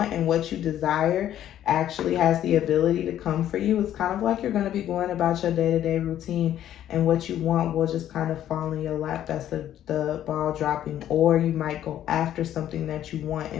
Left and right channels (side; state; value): right; quieter; 11.5 dB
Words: and what you desire actually has the ability to come for you. It's kind of like you're going to be going about your day-to-day routine, and what you want will just kind of fall in your lap. That's the ball dropping. Or you might go after something that you want